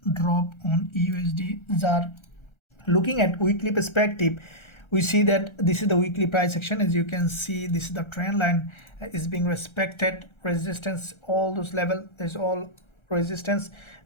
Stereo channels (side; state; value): right; late; 1.3 ms